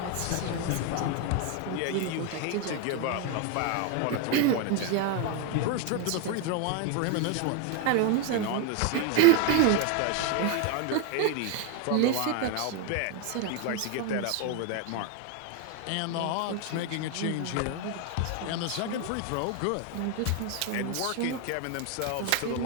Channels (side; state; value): both; different; correlation 0.01